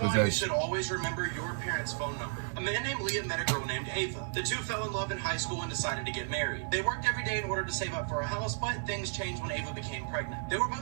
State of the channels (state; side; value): silent; left; 56 dB below the other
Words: why possessed. you should always remember your parents' phone number. A man named Liam met a girl named Ava. The two fell in love in high school and decided to get married. They worked every day in order to save up for a house, but things changed when Ava became pregnant. They were